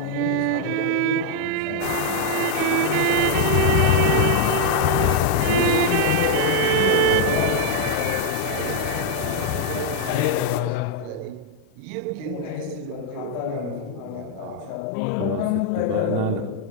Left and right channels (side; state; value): both; different; correlation 0.00